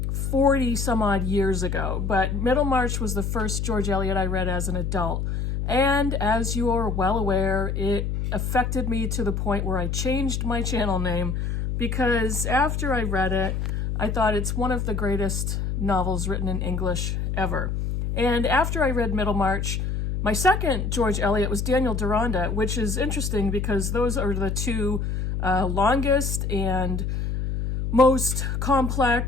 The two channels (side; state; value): left; noise; hum, 1 dB below the sound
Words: 40 some odd years ago, but Middlemarch was the first George Eliot I read as an adult. And as you are well aware, it affected me to the point where I changed my channel name because after I read it, I thought it's one of the greatest novels written in English ever. And after I read Middlemarch, my second George Eliot was Daniel Deronda, which is interesting because those are the two longest and most